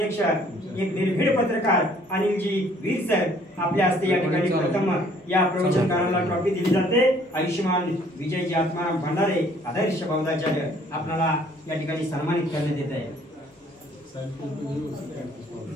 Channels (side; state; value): both; normal; correlation 0.59